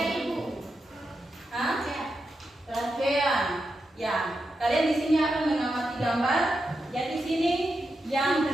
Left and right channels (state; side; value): normal; both; correlation 0.87